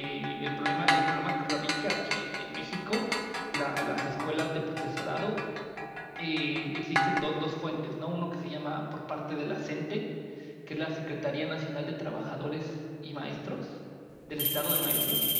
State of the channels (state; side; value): identical; both; correlation 1.00